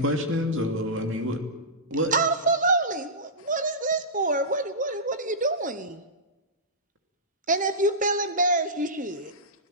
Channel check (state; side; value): normal; both; correlation -0.17